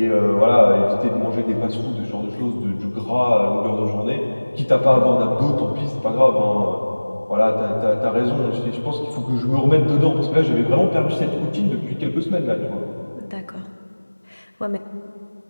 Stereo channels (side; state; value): both; inverted; correlation -1.00